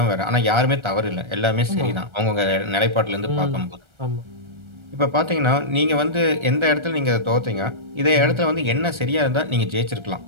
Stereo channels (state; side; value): late; left; 1.3 ms